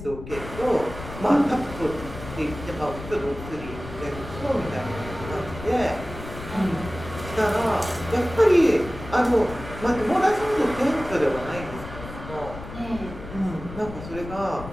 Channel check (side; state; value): left; noise; rumble, 12 dB below the sound